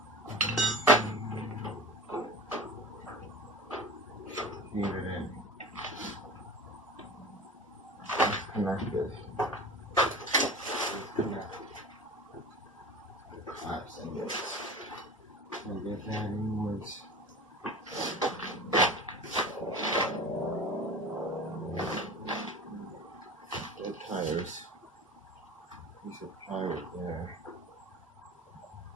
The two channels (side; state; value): both; normal; correlation 0.35